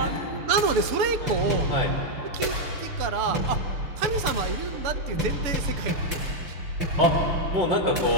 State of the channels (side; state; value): left; late; 6.9 ms